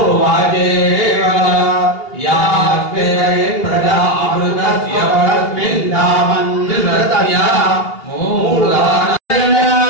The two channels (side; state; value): right; late; 2.8 ms